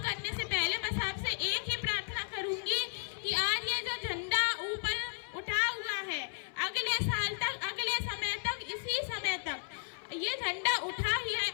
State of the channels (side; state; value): right; silent; 55 dB below the other